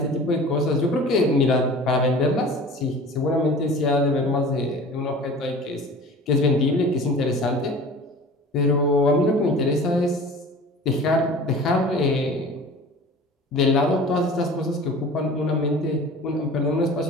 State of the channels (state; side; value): normal; both; correlation 0.40